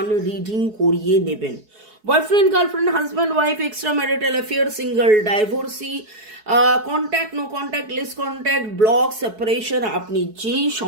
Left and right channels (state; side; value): late; left; 4.7 ms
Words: রিডিং করিয়ে নেবেন। Boyfriend, girlfriend, husband, wife, extra marital affair, single, divorcee, contact, no contact, less contact, block, separation, আপনি যেই